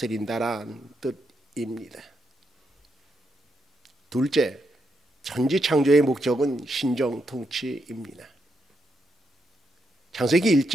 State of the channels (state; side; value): normal; both; correlation 0.81